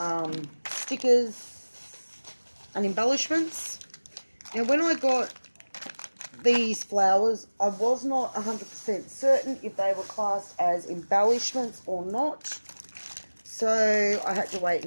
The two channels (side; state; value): both; inverted; correlation -1.00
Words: stickers and embellishments. Now, when I got these flowers, I was not 100% certain if they were classed as embellishments or not. So I had to wait